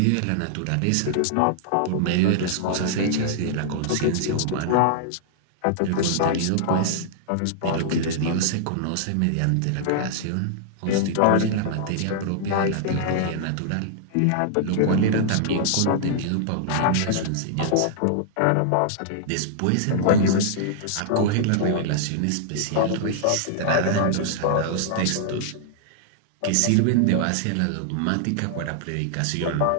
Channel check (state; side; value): different; both; correlation -0.01